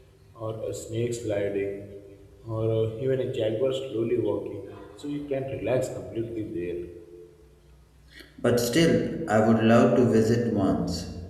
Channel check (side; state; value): both; identical; correlation 1.00